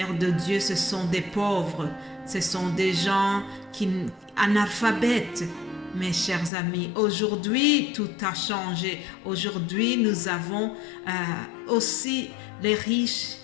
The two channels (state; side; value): drops out; right; at 6.5 s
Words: de Dieu, ce sont des pauvres, ce sont des gens analphabètes. Mes chers amis, aujourd'hui, tout a changé. Aujourd'hui, nous avons aussi les riches